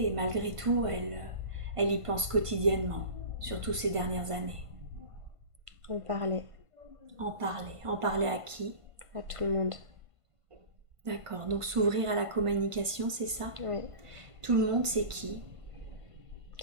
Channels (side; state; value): left; late; 1.5 ms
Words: malgré tout, elle y pense quotidiennement, surtout ces dernières années. En parler. En parler. En parler à qui? À tout le monde. D'accord, donc s'ouvrir à la communication, c'est ça? Oui. Tout le monde, c'est qui?